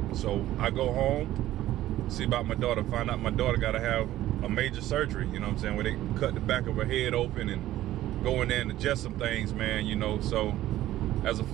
So I go home, see about my daughter, find out my daughter gotta have a major surgery, you know what I'm saying, where they cut the back of her head open and go in there and adjust some things, man, you know. So as a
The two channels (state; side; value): quieter; left; 14.3 dB